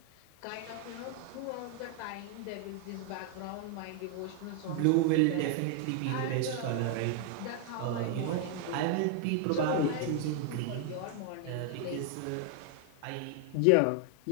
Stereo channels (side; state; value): both; different; correlation 0.00